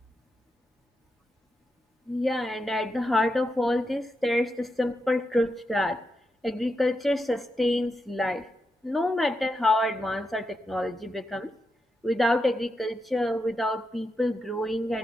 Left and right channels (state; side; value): normal; both; correlation 0.86